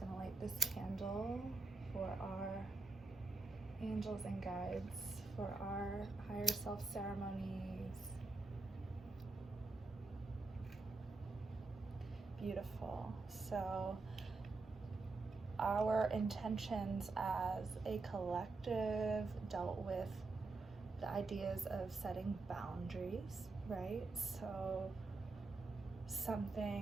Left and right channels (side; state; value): left; quieter; 3.6 dB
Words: to light this candle for our angels and guides for our higher self ceremonies. Beautiful. So our intentions as a collective dealt with the ideas of setting boundaries, right? So